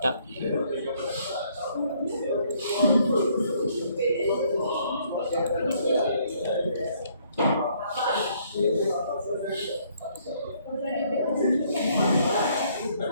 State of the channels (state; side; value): inverted; both; correlation -0.66